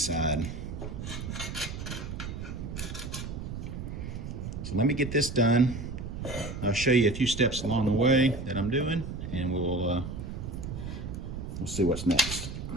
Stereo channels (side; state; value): right; noise; rumble, 7 dB below the sound